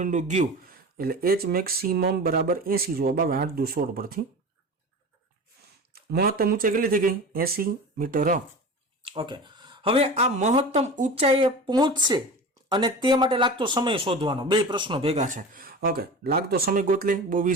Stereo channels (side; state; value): both; normal; correlation 0.32